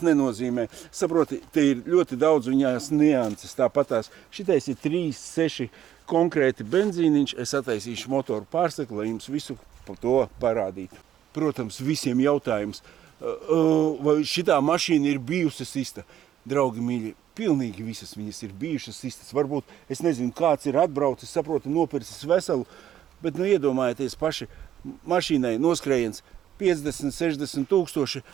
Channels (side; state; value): left; quieter; 10.5 dB